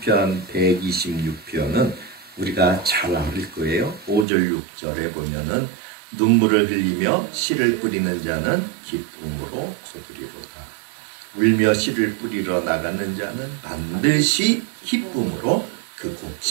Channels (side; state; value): left; drops out; at 4.2 s